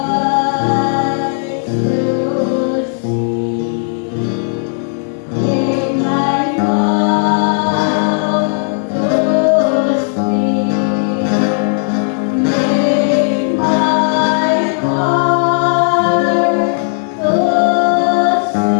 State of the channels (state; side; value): silent; right; 70 dB below the other